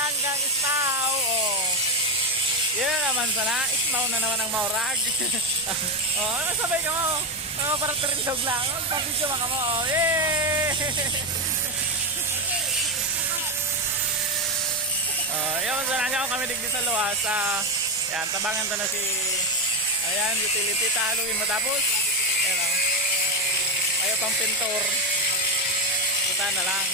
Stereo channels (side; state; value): both; normal; correlation 0.11